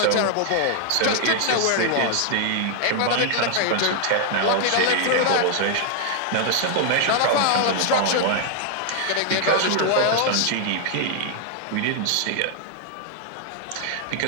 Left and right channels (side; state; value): both; different; correlation 0.00